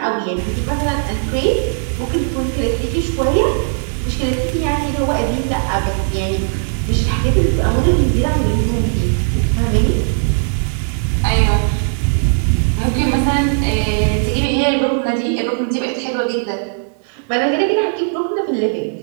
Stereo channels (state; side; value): silent; left; digital silence